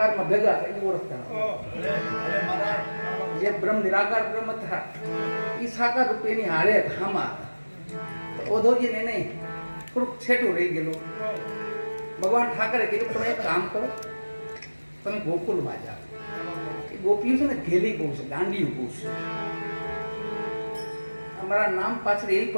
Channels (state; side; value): inverted; both; correlation -1.00